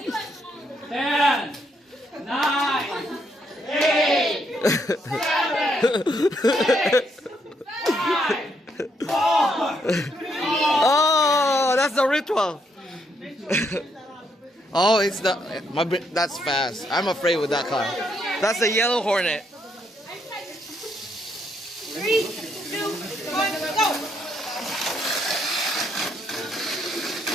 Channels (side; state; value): both; normal; correlation 0.75